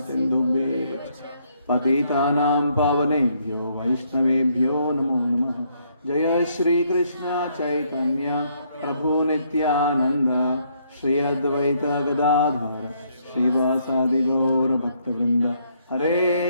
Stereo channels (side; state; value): both; inverted; correlation -0.71